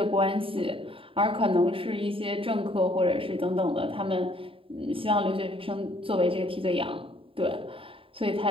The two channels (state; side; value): late; left; 0.26 ms